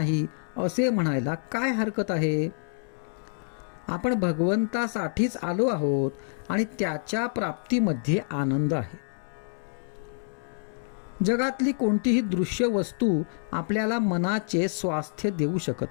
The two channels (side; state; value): right; silent; 60 dB below the other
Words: असे म्हणायला काय हरकत आहे. आपण भगवंतासाठीच आलो आहोत आणि त्याच्या प्राप्तीमध्ये आनंद आहे. जगातली कोणतीही दृश्य वस्तू आपल्याला मनाचे स्वास्थ्य देऊ